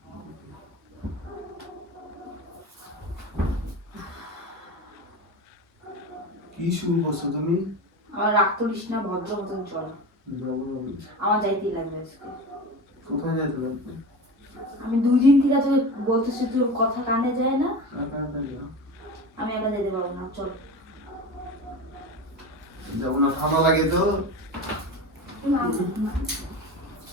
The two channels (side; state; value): both; normal; correlation 0.28